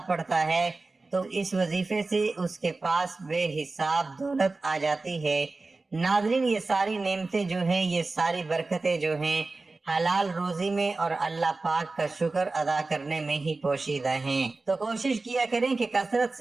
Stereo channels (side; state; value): left; quieter; 3.5 dB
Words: پڑھتا ہے تو اس وظیفے سے اس کے پاس بے حساب دولت آ جاتی ہے۔ ناظرین، یہ ساری نعمتیں جو ہیں، یہ ساری برکتیں جو ہیں، حلال روزی میں اور اللہ پاک کا شکر ادا کرنے میں ہی پوشیدہ ہیں۔ تو کوشش کیا کریں کہ کثرت